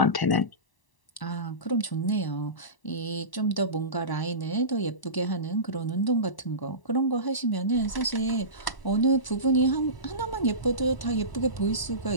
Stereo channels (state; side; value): late; right; 1.0 ms